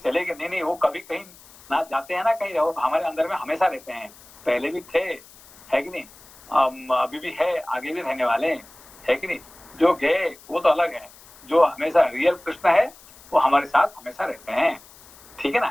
गए, नहीं, वो कभी कहीं ना जाते हैं ना कहीं, रहो हमारे अंदर में हमेशा रहते हैं, पहले भी थे, है कि नहीं? अभी भी है, आगे भी रहने वाले, है कि नहीं? जो गए वो तो अलग है, जो हमेशा रियल कृष्ण है वो हमारे साथ हमेशा रहते हैं, ठीक है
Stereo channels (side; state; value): left; noise; hiss, 23 dB below the sound